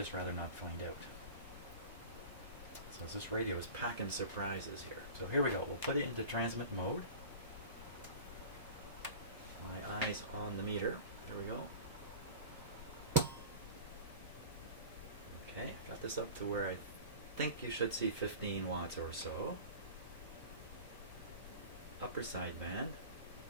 rather not find out. So this radio is packing surprises here. So here we go. We'll put it into transmit mode. My eyes on the meter. There we go. Okay, got this up to where I think you should see 15 watts or so. Upper side band.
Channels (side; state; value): both; inverted; correlation -0.36